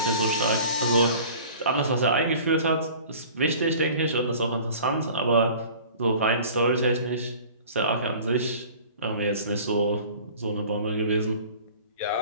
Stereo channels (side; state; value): both; inverted; correlation -0.44